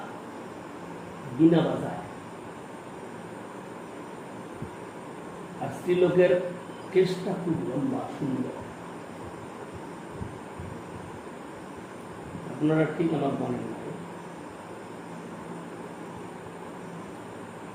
বিনা বাজায় আর স্ত্রীলোকের কেসটা খুব লম্বা সুন্দর। আপনারা ঠিক আমার মনে নাই।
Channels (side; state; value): both; identical; correlation 1.00